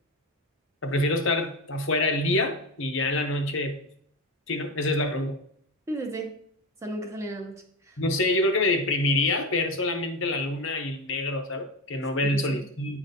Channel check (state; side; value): normal; both; correlation 0.20